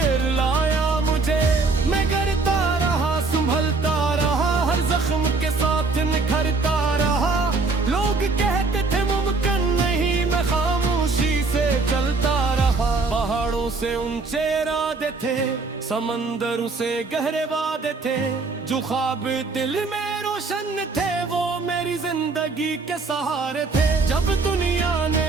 रुलाया मुझे। मैं करता रहा, संभलता रहा, हर जख्म के साथ निखरता रहा। लोग कहते थे मुमकिन नहीं, मैं खामोशी से चलता रहा। पहाड़ों से ऊंचे इरादे थे, समंदरों से गहरे वादे थे, जो ख्वाब दिल में रोशन थे वो मेरी जिंदगी के सहारे थे। जब दुनिया ने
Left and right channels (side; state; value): left; quieter; 3.9 dB